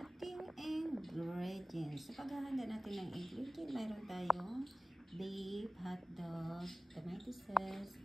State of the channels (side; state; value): both; normal; correlation 0.95